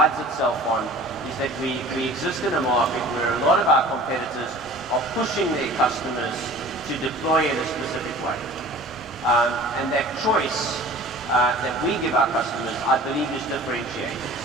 itself on is that we exist in a market where a lot of our competitors are pushing their customers to deploy in a specific way. And that choice that we give our customers, I believe, is differentiated.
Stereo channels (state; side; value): normal; both; correlation 0.44